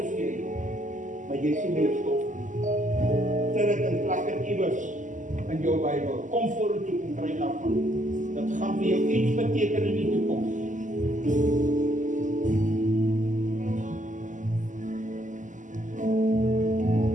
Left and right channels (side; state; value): left; late; 0.37 ms